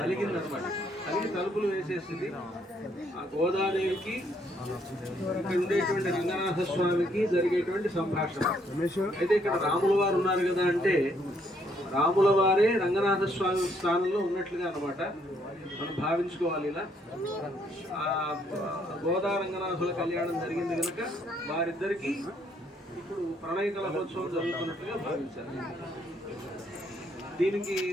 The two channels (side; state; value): both; normal; correlation 0.70